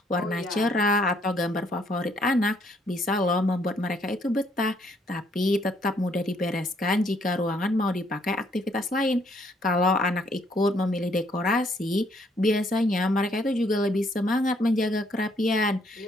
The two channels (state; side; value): normal; both; correlation 0.68